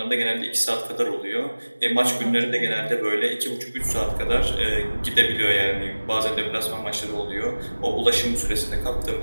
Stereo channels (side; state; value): both; inverted; correlation -1.00